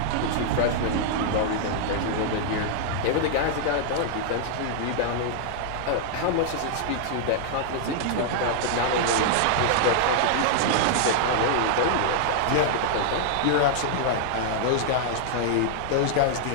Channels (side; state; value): both; different; correlation -0.01